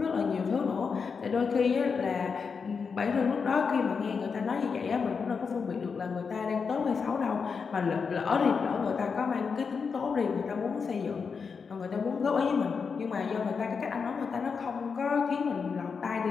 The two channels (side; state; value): right; quieter; 5.6 dB